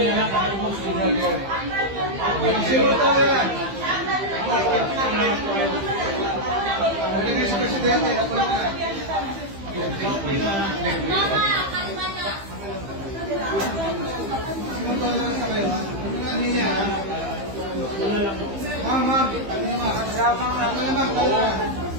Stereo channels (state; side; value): late; left; 15 ms